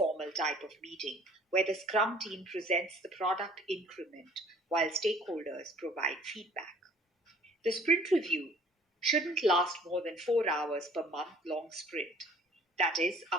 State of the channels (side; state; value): both; normal; correlation 0.54